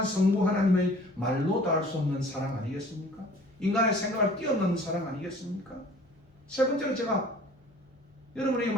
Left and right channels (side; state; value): both; normal; correlation 0.49